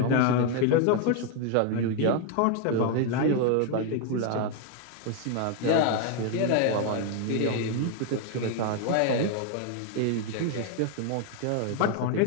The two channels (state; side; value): different; both; correlation 0.00